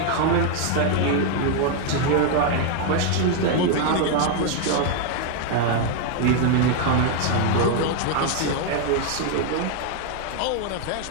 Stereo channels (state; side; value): different; both; correlation 0.00